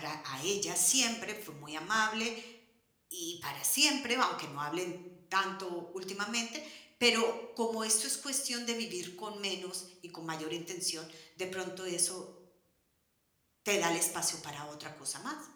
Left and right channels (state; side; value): identical; both; correlation 1.00